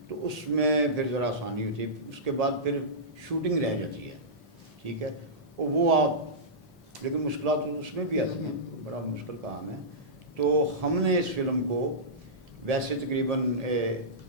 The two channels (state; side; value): normal; both; correlation -0.17